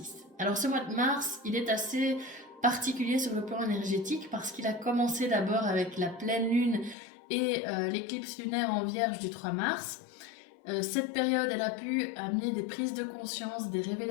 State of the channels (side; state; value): right; drops out; at 7.0 s